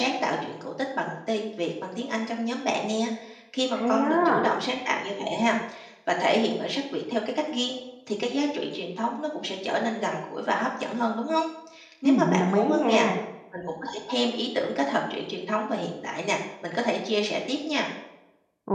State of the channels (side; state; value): both; identical; correlation 1.00